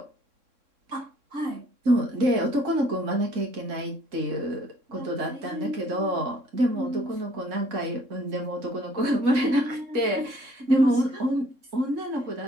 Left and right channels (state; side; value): late; left; 3.6 ms